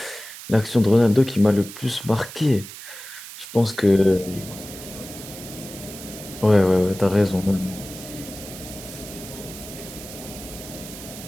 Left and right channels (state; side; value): noise; right; hiss, 13 dB below the sound